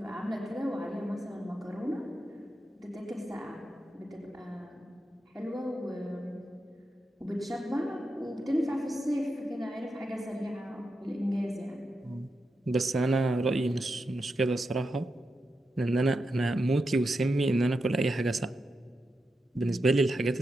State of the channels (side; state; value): both; normal; correlation 0.87